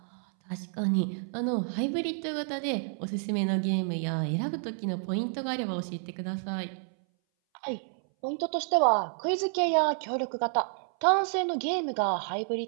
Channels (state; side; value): silent; left; 58 dB below the other